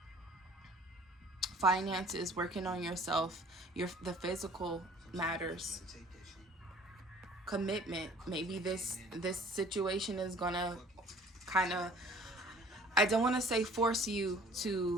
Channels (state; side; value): normal; both; correlation 0.52